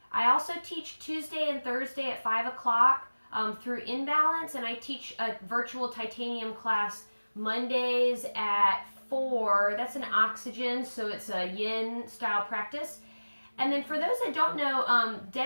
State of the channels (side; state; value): both; inverted; correlation -1.00